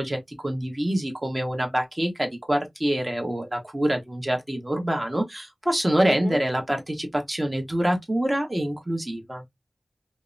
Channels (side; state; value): both; normal; correlation 0.98